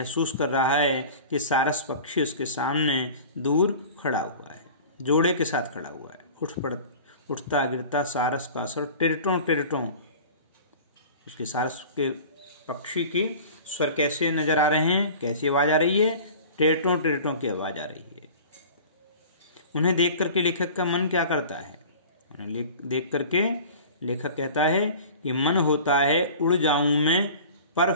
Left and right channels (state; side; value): inverted; both; correlation -0.40